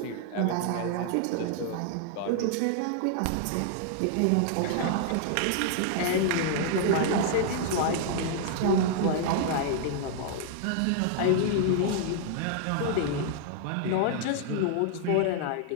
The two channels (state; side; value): different; both; correlation 0.00